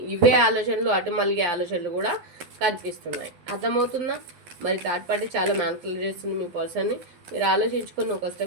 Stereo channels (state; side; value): late; left; 11 ms